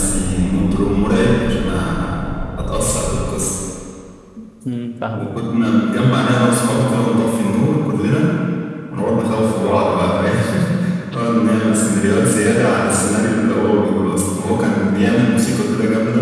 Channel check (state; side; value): identical; both; correlation 1.00